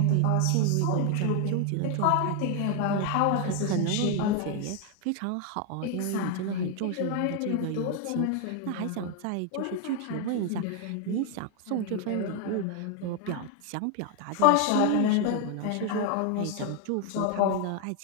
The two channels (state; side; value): different; both; correlation 0.01